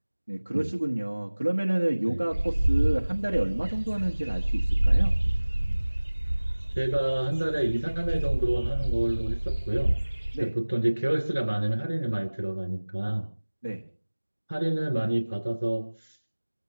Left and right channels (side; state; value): both; inverted; correlation -1.00